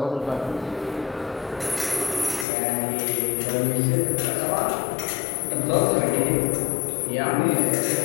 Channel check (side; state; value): right; drops out; at 2.5 s